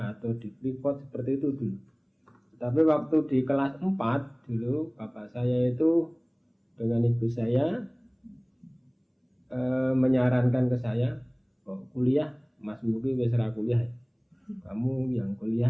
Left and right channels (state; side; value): identical; both; correlation 1.00